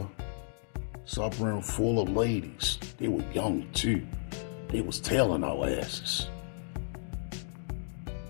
suburban full of ladies. They were young too. They was tailing our asses.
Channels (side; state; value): right; silent; digital silence